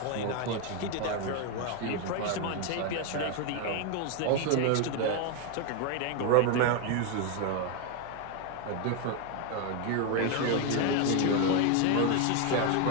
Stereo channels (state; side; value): different; both; correlation 0.01